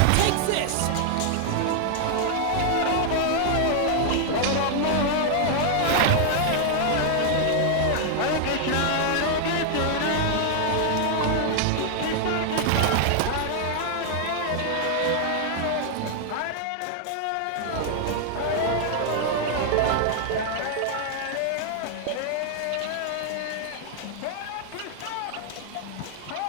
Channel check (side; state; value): both; different; correlation 0.00